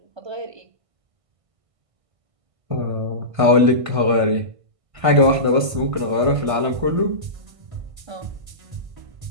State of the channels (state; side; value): late; left; 1.5 ms